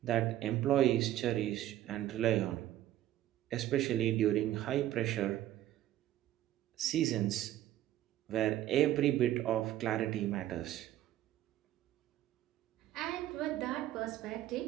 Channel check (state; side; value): quieter; left; 13.3 dB